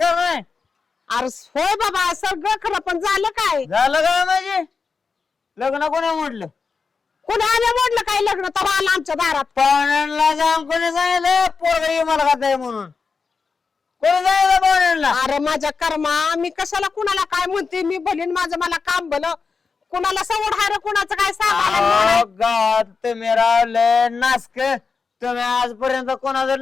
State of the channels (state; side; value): quieter; right; 5.0 dB